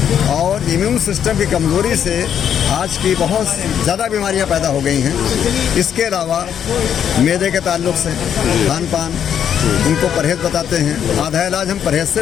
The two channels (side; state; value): right; quieter; 8.9 dB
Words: और इम्यून सिस्टम की कमज़ोरी से आज की बहुत ज़्यादा बीमारियां पैदा हो गई हैं। इसके अलावा मैदे के ताल्लुक से खान पान, उनको परहेज़ बताते हैं, आधा इलाज हम परहेज़ से